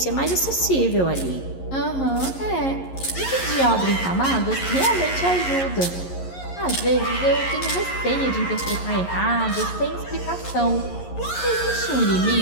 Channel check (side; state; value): right; late; 11 ms